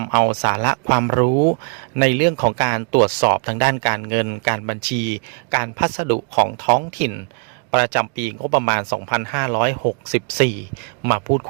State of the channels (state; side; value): quieter; left; 37.1 dB